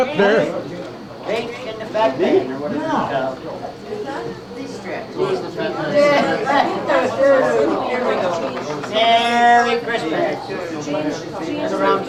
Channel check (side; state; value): both; identical; correlation 1.00